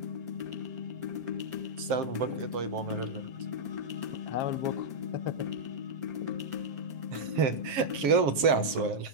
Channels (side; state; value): left; late; 7.5 ms